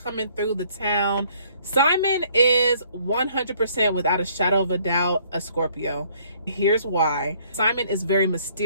through the town. Simon is 100%, without a shadow of a doubt, a Scorpio. Here's why. Simon is very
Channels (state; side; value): inverted; both; correlation -0.62